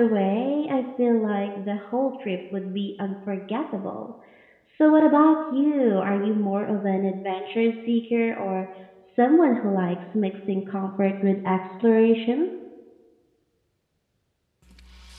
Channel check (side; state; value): both; identical; correlation 1.00